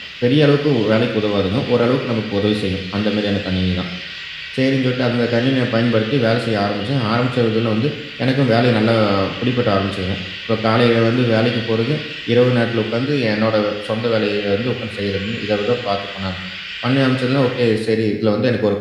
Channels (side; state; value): both; identical; correlation 1.00